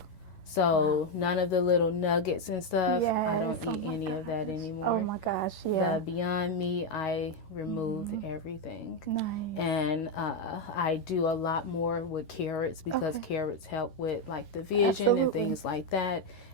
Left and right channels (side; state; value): right; late; 11 ms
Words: So none of the little nuggets and stuff, I don't eat any of that anymore. Oh my gosh, yeah. The Beyond Meat, I removed everything. Nice. And I do a lot more with carrots, because carrots help with like the vision and things like that.